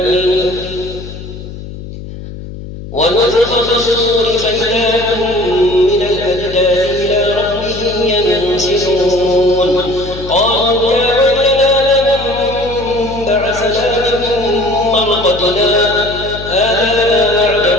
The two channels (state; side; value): noise; left; hum, 12 dB below the sound